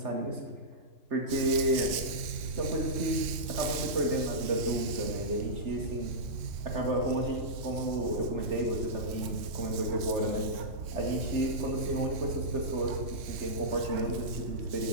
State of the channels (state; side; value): late; left; 3.6 ms